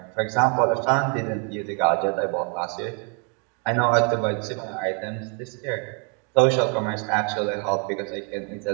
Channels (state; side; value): quieter; left; 37.2 dB